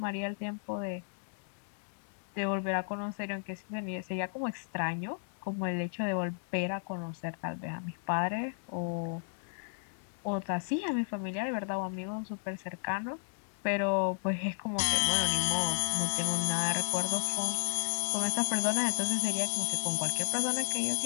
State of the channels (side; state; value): right; silent; digital silence